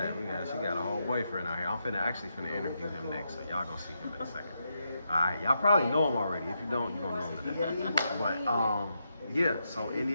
she got a whole boyfriend out here. I'm actually finna interview him next, so y'all gonna see him in a second. Alright, y'all probably know him already. If you don't, you're gonna know him today. But yeah, so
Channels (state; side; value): inverted; both; correlation -0.83